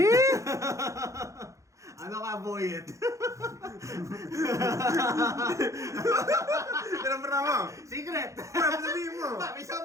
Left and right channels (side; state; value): left; late; 0.15 ms